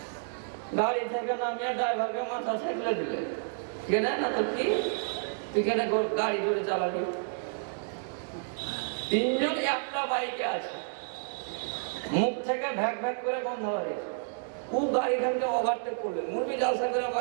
গাড়ি থেকে নামিয়ে ড্রাইভারকে মাথা ছেঁকলে দিলে, কেনে না তো কি তুই কেন গাড়ি ধরে চালাবি? 3 জন একটা বাইকে আছে, মুখ থেকে ভ্যাক ভ্যাক করে বন্ধ হয়েছে, ও গাড়িখানকে ওভারটেক করবে, মুরবি জালসা করে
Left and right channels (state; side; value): silent; left; digital silence